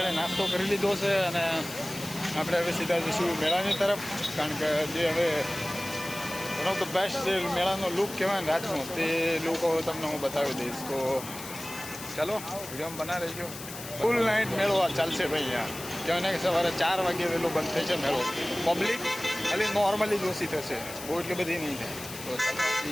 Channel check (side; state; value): left; noise; hiss, 12 dB below the sound